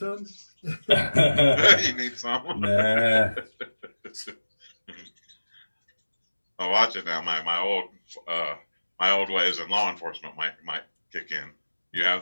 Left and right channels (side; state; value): both; inverted; correlation -1.00